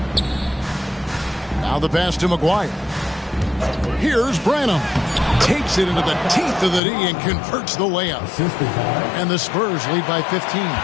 Now the pass to McGuire. Here's Branham. Takes it into the teeth of the D and converts the layup. And the Spurs lead by 15.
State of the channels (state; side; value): drops out; right; at 6.8 s